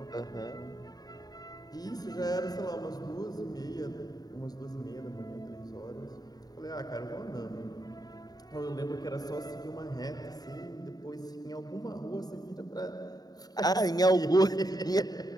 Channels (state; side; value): late; right; 0.19 ms